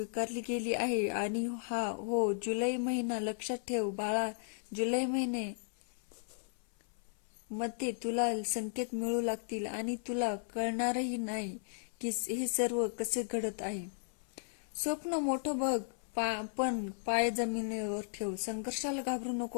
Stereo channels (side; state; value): right; silent; 54 dB below the other